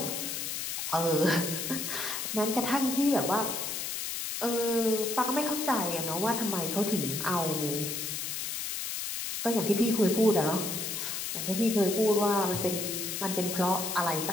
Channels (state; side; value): noise; left; hiss, 3 dB below the sound